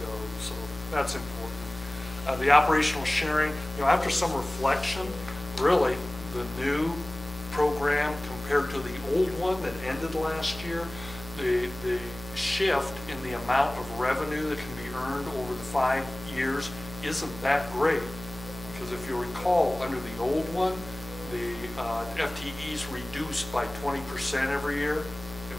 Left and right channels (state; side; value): noise; left; hum, 14 dB below the sound